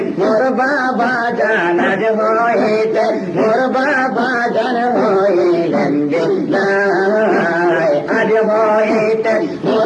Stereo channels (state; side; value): identical; both; correlation 1.00